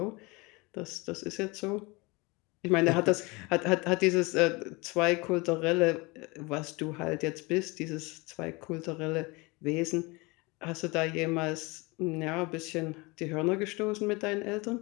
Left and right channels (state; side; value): quieter; right; 25.6 dB